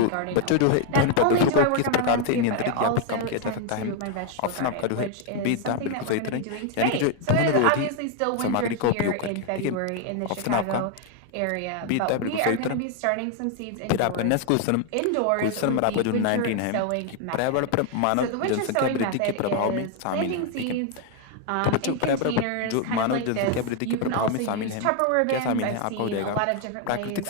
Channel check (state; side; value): different; both; correlation 0.01